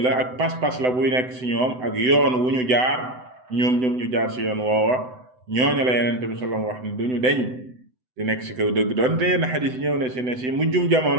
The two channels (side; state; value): left; late; 7.9 ms